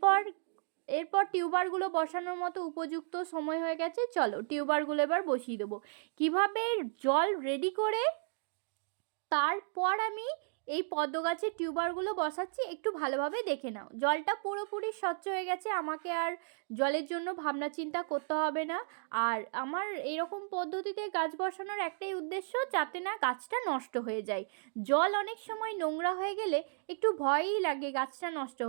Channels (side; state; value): left; silent; digital silence